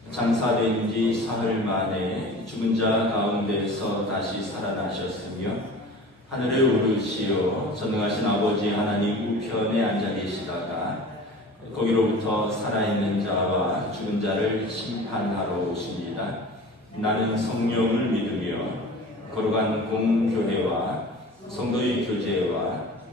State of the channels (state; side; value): normal; both; correlation 0.39